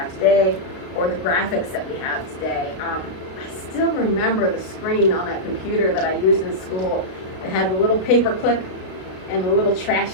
today or the graphics that we have today. I still remember the screen on that computer that I used in school. It had the little paper clip and the little trash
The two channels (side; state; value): right; late; 32 ms